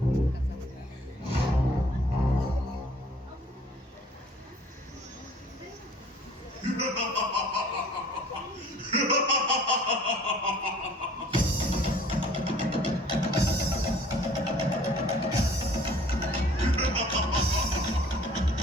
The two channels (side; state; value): both; normal; correlation 0.53